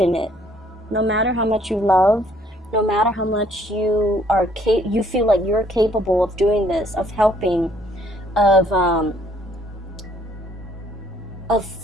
it. No matter how much you love, no matter how much you feel like you're capable of doing this, of helping, of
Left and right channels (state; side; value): normal; both; correlation 0.64